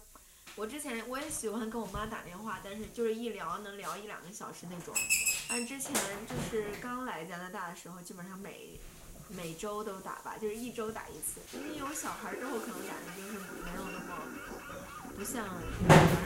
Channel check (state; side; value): identical; both; correlation 1.00